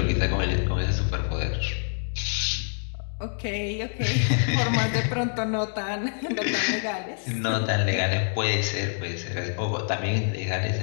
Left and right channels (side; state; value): right; silent; digital silence